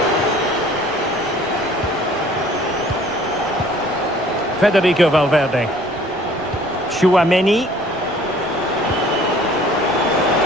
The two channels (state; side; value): noise; left; rumble, 25 dB below the sound